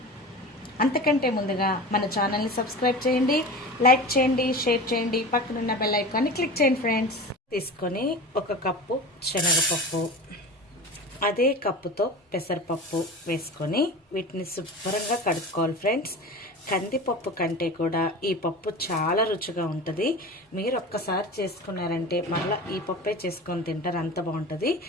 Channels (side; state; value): both; normal; correlation 0.32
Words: అంతకంటే ముందుగా మన ఛానల్ని సబ్స్క్రైబ్ చేయండి, లైక్ చేయండి, షేర్ చేయండి, పక్కనున్న బెల్ ఐకాన్ని క్లిక్ చేయండి ఫ్రెండ్స్. తీసుకొని ఒక కప్పు శనగపప్పు, అదే కప్పుతో పెసరపప్పు వేసుకొని వీటిని శుభ్రంగా కడుక్కోవాలి ఫ్రెండ్స్. కందిపప్పు కంటే కూడా ఈ పప్పు చాలా రుచిగా ఉంటుంది. మీరు ఒక్కసారి చేసుకున్నారంటే మళ్ళీ ఈ పప్పే చేసుకొని తింటారు, అంత బాగుంటుంది.